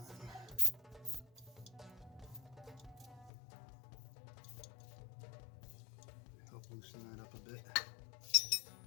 Help loosen that up a bit.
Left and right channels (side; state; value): right; drops out; at 3.3 s